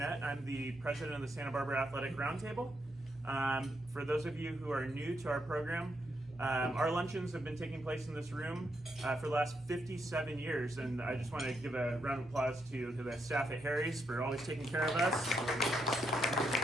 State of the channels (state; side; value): normal; both; correlation 0.80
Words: I'm the president of the Santa Barbara Athletic Roundtable. For those of you who are new to our program, our luncheons have been taking place in this room for the last 57 years, and I just want to give a round of applause to the staff at Harry's for always taking care of us.